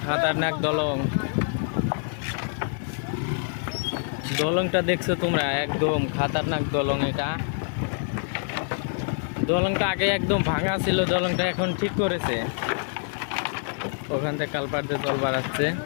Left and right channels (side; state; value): right; silent; 56 dB below the other